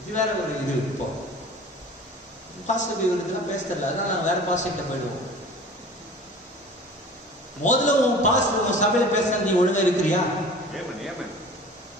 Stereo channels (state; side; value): normal; both; correlation 0.42